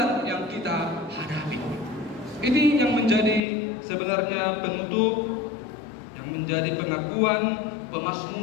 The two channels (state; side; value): drops out; right; at 3.4 s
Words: yang kita hadapi. Ini yang menjadi sebenarnya penutup, yang menjadi pengakuan